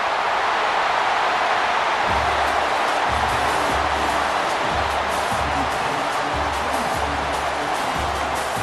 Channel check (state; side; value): identical; both; correlation 1.00